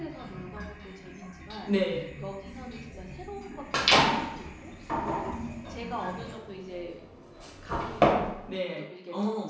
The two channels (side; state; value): both; identical; correlation 1.00